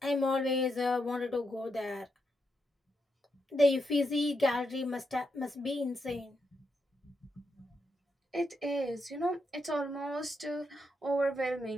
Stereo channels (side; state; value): both; normal; correlation 0.83